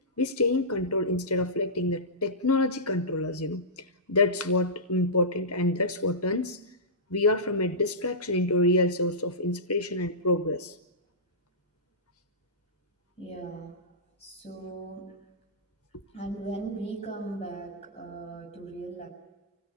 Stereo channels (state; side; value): normal; both; correlation -0.18